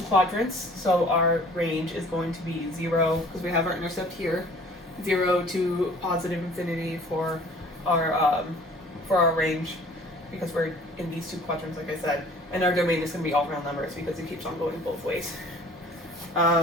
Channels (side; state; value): both; normal; correlation 0.51